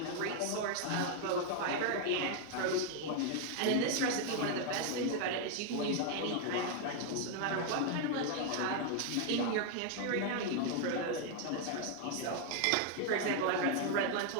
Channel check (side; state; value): both; different; correlation 0.00